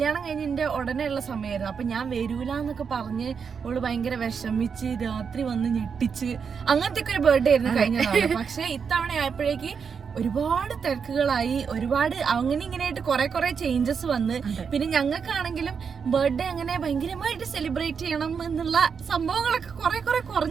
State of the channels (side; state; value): left; quieter; 6.3 dB